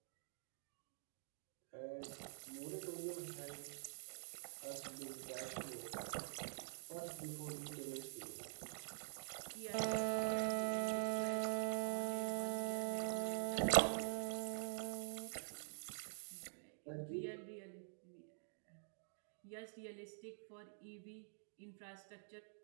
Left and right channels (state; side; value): silent; left; digital silence